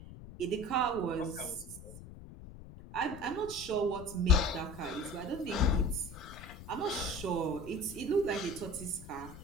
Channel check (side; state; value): left; noise; rumble, 14 dB below the sound